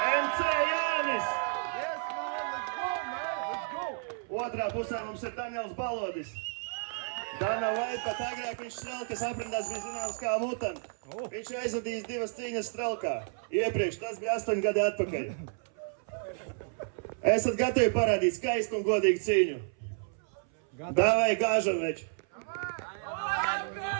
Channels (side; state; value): left; silent; 57 dB below the other